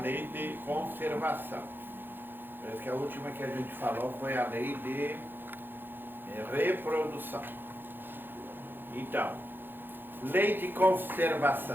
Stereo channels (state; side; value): late; left; 0.098 ms